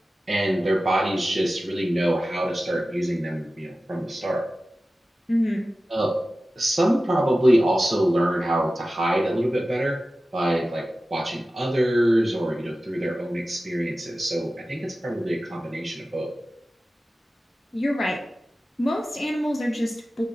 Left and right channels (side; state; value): both; normal; correlation 0.95